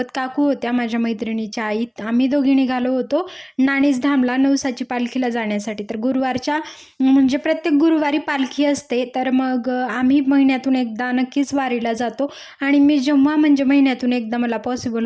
काकू होत्या माझ्या मैत्रिणीच्या आई, आम्ही दोघी निघालो होतो नाणीज धामला नवसाची पालखीला जाण्यासाठी। तर गुरुवारच्या म्हणजे प्रत्येक गुरुवारी पालखी असते, तर मग आम्ही महिन्यातून एकदा नक्कीच वारीला जातो। आणि मी जेव्हा म्हणजे महिन्यातून एकदा मला पॉसिबल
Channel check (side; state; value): both; identical; correlation 1.00